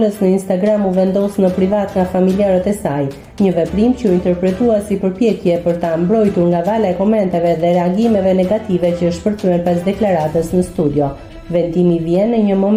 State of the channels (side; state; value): both; identical; correlation 1.00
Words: në Instagram u vendos në privat nga familjarët e saj, një veprim që u interpretua si përpjekje për ta mbrojtur nga vala e komenteve dhe reagimeve negative që shpërthyen pas deklaratës në studio. Vendimi vjen në një